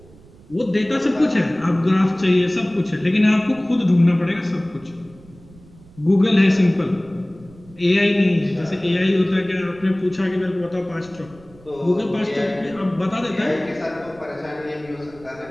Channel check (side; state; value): right; noise; rumble, 23 dB below the sound